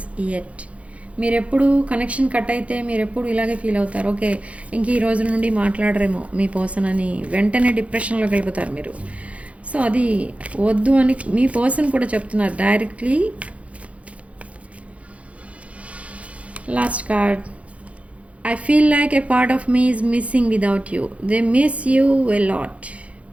yet. మీరు ఎప్పుడు connection cut అయితే మీరు ఎప్పుడు ఇలాగే ఫీల్ అవుతారు. ఓకే, ఇంక ఈ రోజు నుండి మాట్లాడరేమో మీ పర్సన్ అని వెంటనే డిప్రెషన్లోకి వెళ్ళిపోతారు మీరు. సో అది వద్దు అని మీ పర్సన్ కూడా చెప్తున్నారు directly. Last card. I feel like a part of me is missing without you. They miss you a lot.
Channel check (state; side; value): late; left; 0.064 ms